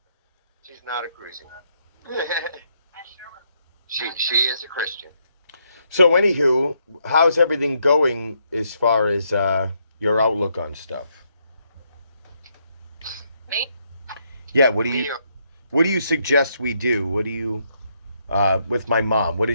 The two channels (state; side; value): inverted; both; correlation -0.76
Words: She's not a Christian. She is a Christian. So, anywho, how's everything going as far as your outlook on stuff? Yeah, what do you suggest we do? What do you with my mom? What